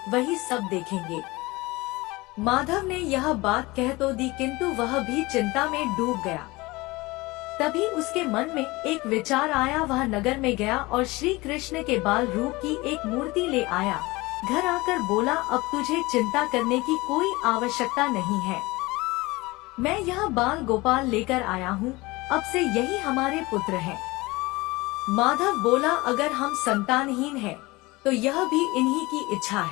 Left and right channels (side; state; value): right; quieter; 22.0 dB